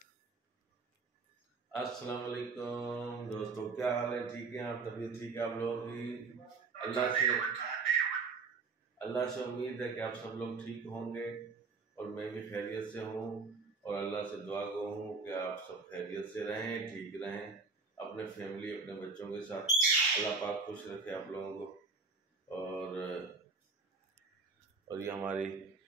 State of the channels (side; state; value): left; quieter; 4.3 dB